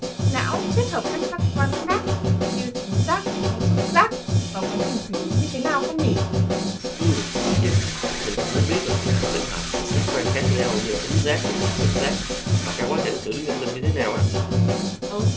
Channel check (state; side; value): identical; both; correlation 1.00